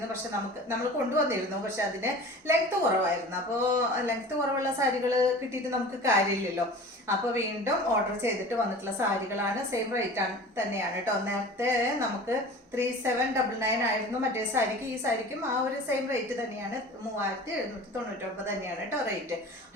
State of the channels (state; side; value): normal; both; correlation 0.39